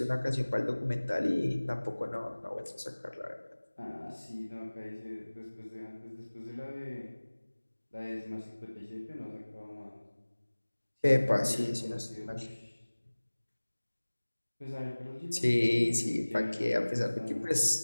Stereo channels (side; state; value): both; inverted; correlation -1.00